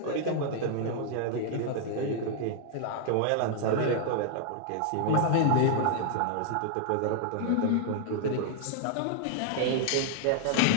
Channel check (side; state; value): both; different; correlation -0.01